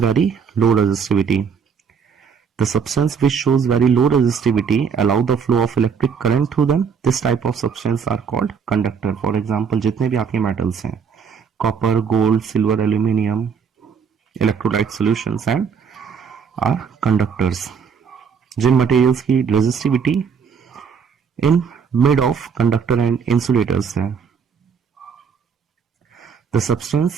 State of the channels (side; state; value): left; quieter; 6.5 dB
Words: very low resistivity. The substance which shows very low resistivity allow the flow of electric current through them. This type of substance are called conductor. For example, जितने भी आपके metals हैं, copper, gold, silver, aluminium, electrolyte solutions and are conductors. जिन materials की resistivity in mid of conductor and insulators है. The substance